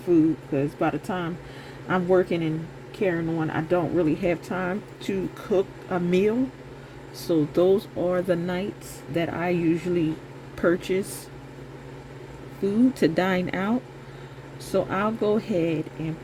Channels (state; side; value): identical; both; correlation 1.00